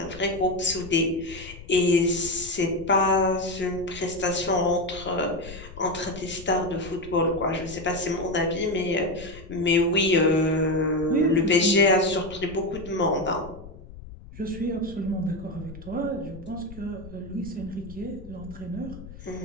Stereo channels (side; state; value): left; noise; rumble, 16 dB below the sound